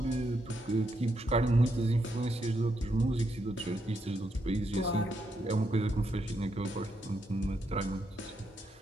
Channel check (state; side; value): normal; both; correlation 0.80